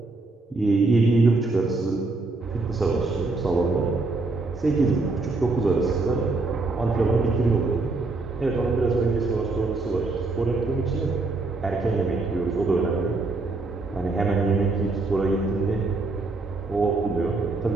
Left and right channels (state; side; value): quieter; left; 3.5 dB